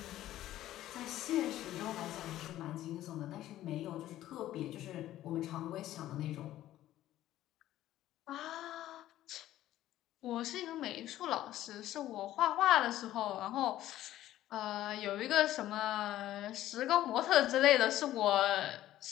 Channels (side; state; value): right; quieter; 13.8 dB